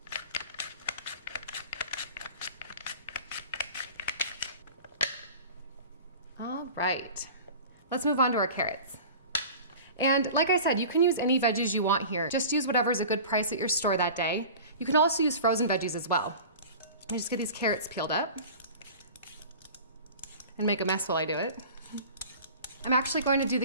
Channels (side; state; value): both; inverted; correlation -0.38